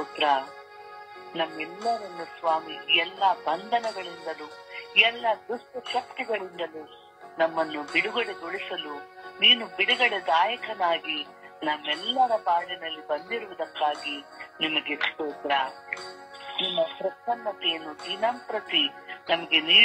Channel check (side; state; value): both; identical; correlation 1.00